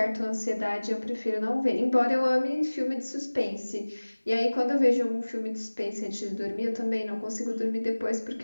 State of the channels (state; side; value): inverted; both; correlation -1.00